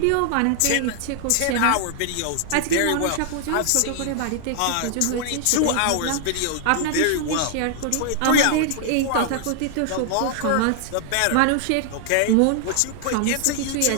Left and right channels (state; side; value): different; both; correlation 0.00